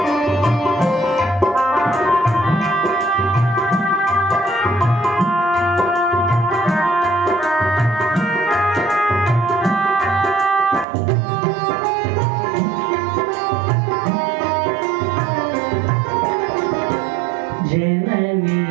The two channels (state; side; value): drops out; left; at 10.9 s